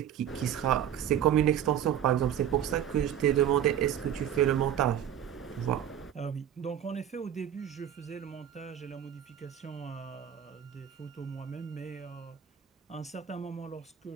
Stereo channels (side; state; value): left; quieter; 10.0 dB